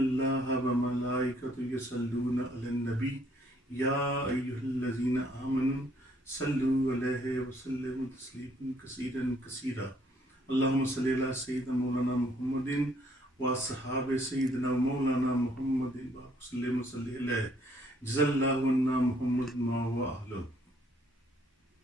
وملائکۃ یصلون علی النبی یا ایھا الذین آمنوا صلوا علیہ وسلموا تسلیما کثیرا کثیرا اللہم صلی علی سیدنا مولانا محمد و صحاب سیدنا مولانا محمد وسلم صلی علیہ جزا اللہ عنا محمد ما و اہلہ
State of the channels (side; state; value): both; normal; correlation 0.65